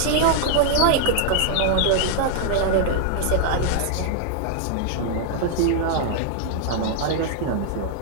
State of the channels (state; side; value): different; both; correlation 0.00